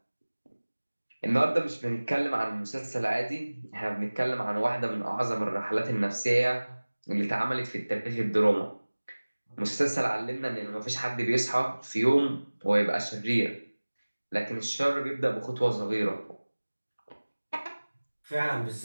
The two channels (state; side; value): inverted; both; correlation -1.00